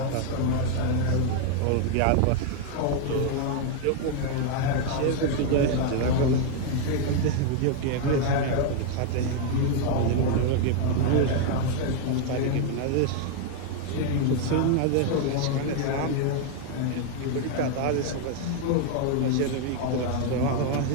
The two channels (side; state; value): both; different; correlation 0.00